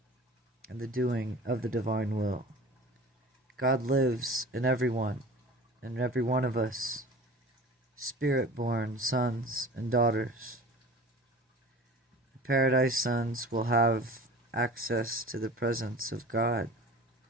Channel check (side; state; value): both; normal; correlation 0.40